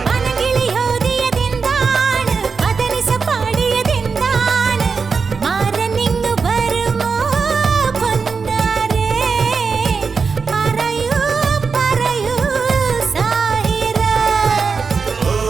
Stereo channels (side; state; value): left; quieter; 5.2 dB